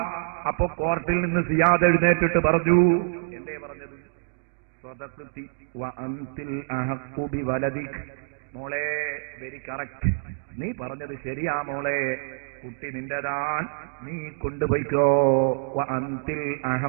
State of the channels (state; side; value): silent; left; digital silence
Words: അപ്പോ കോർട്ടിൽ നിന്ന് സിയാദ് എഴുന്നേറ്റിട്ട് പറഞ്ഞു, എന്തേ പറഞ്ഞത്? സ്വദഖ്തി വഅൻതിൽ അഹഖു ബിവലദിക്. മോളെ, വെരി കറക്റ്റ്, നീ പറഞ്ഞത് ശരിയാ മോളെ, കുട്ടി നിന്റെതാൻ, നീ കൊണ്ടുപോയിക്കോ. വഅൻതിൽ